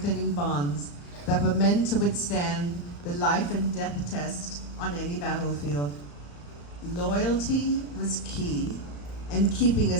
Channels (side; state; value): right; late; 35 ms